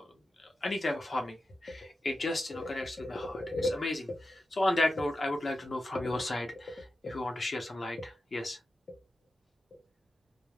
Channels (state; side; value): normal; both; correlation 0.91